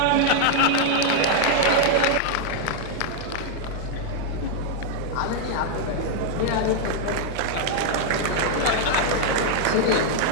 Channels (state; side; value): different; both; correlation 0.00